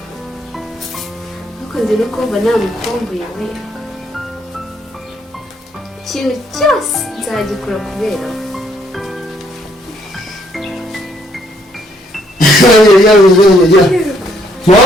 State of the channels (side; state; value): both; normal; correlation 0.69